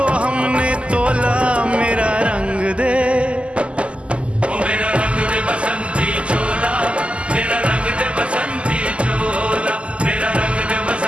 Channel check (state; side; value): late; left; 0.056 ms